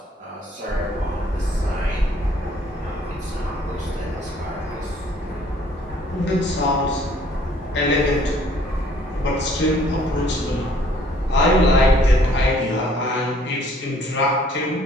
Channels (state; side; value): normal; both; correlation 0.60